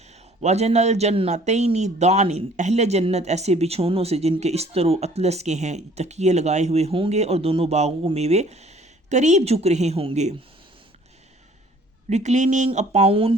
الجنتین دان. اہل جنت ایسے بچھونوں سے جن کے استر و اطلس کے ہیں تکیے لگائے ہوئے ہوں گے اور دونوں باغوں کو میوے قریب جھک رہے ہوں گے. reclining upon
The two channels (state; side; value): normal; both; correlation 0.55